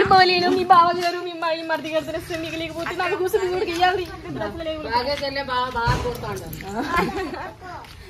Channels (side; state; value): both; identical; correlation 1.00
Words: బాగలేను. మీ బావగారు మీ మరిది గారు తెలిస్తే మీకు లేకపోతే నాకు కూర్చొని కూడా ఇయ్యాలి.